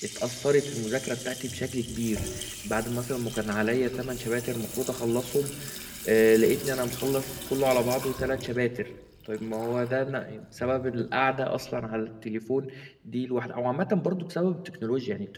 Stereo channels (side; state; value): both; identical; correlation 1.00